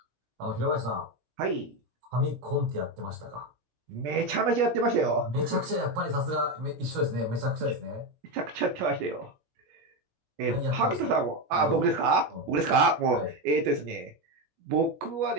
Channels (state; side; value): late; left; 17 ms